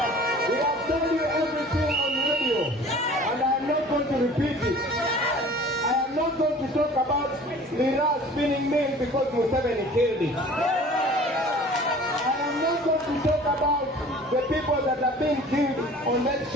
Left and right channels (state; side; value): normal; both; correlation 0.46